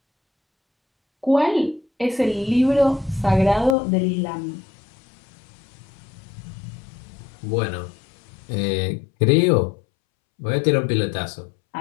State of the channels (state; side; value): drops out; right; at 3.8 s